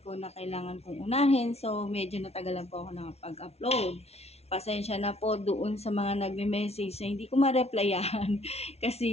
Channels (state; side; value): late; right; 0.31 ms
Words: ko na kailangan kong unahin, so medyo natagalan po ako nakapag-upload. Pasensya na po doon sa mga nagme-message na hindi ko ma-replyan,